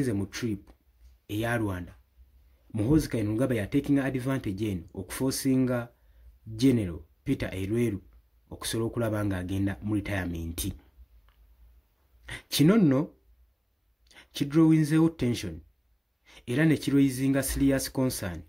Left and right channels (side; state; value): both; identical; correlation 1.00